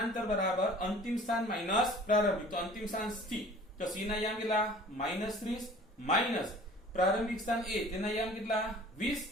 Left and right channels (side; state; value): both; normal; correlation 0.47